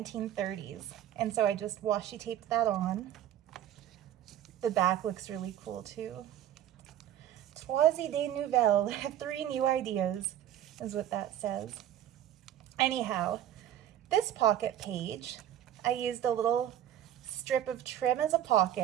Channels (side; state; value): left; quieter; 11.4 dB